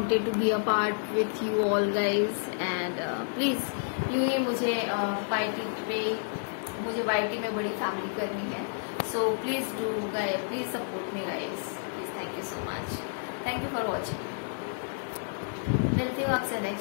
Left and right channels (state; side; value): silent; right; digital silence